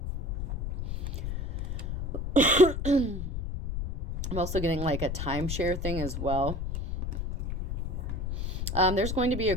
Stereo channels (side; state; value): left; noise; rumble, 3 dB below the sound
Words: I'm also getting like a timeshare thing as well. There's going to be a